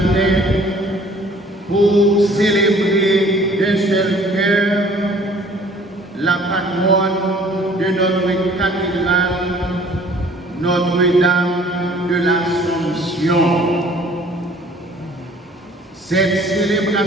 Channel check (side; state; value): both; normal; correlation 0.54